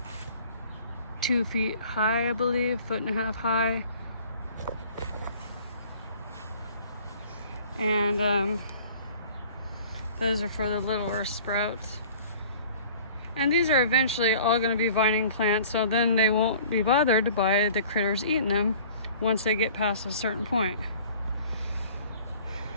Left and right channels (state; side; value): inverted; both; correlation -0.49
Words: 2 feet high, I believe, 1.5 feet high. And those are for the littler sprouts. And these are eventually all going to be vining plants, so then they won't be bothered by the critters eating them once they get past a certain point.